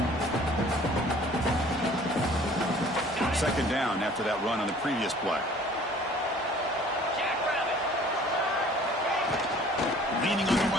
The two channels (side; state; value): both; normal; correlation 0.51